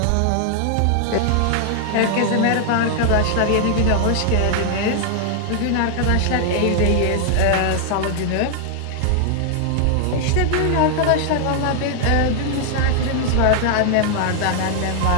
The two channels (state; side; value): different; both; correlation 0.00